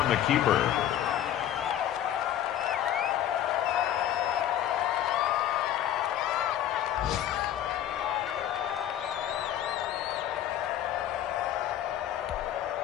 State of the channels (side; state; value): right; quieter; 11.2 dB